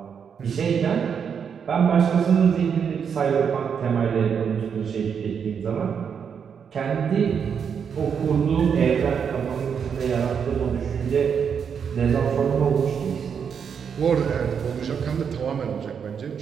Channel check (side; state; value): left; quieter; 7.0 dB